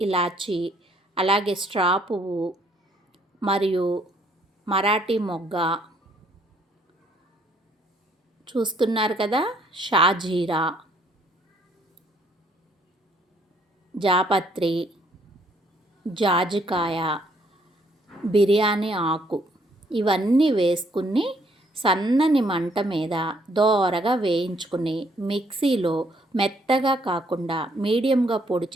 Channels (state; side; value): normal; both; correlation 0.67